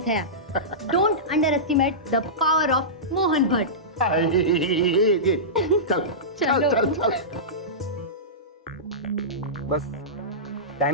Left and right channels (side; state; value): both; normal; correlation -0.17